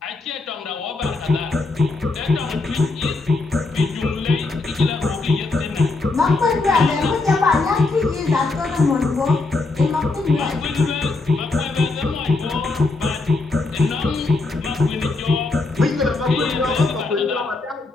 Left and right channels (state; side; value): quieter; right; 3.5 dB